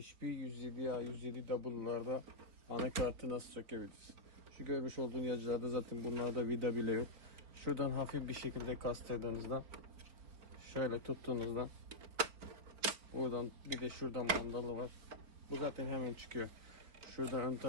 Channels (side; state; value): left; late; 4.5 ms